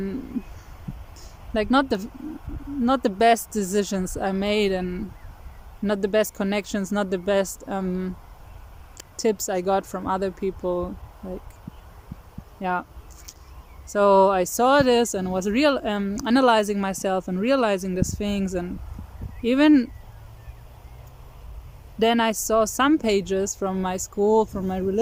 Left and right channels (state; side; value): identical; both; correlation 1.00